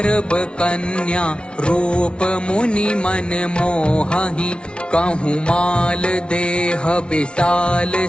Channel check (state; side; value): late; right; 0.058 ms